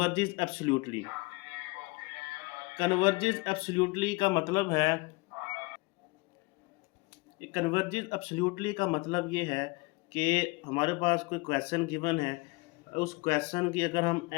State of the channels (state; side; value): quieter; right; 25.5 dB